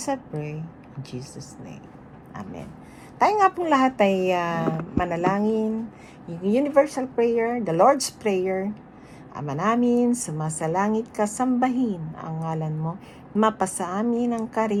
I pray in Jesus' name. Amen. Tayo nga pong lahat ay manalangin. Yung universal prayer, the Lord's Prayer. Ama namin, sumasalangit ka, sambahin ang ngalan mo. Mapasa amin ang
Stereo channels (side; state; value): both; identical; correlation 1.00